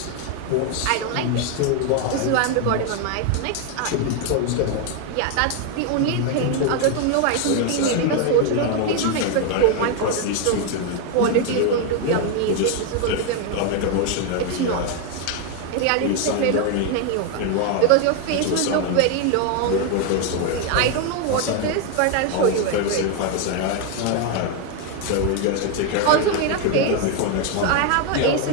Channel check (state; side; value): different; both; correlation 0.01